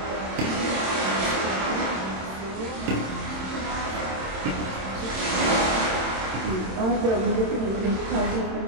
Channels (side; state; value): left; late; 27 ms